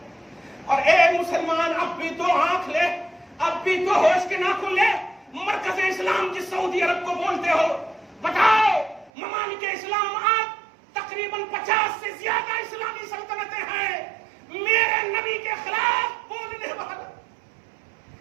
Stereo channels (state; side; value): drops out; left; at 9.1 s